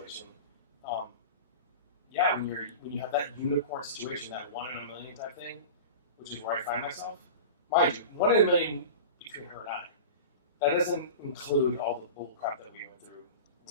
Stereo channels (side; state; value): both; inverted; correlation -0.33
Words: yeah, when you have that unicorn situation, that 1 in a million type thing, which is where I find myself, mind you, 1 in a million between her and I. That doesn't include all the bull crap that we went through